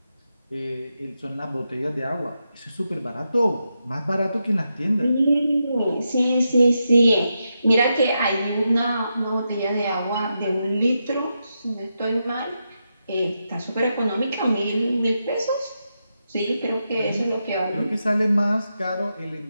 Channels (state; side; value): inverted; both; correlation -0.86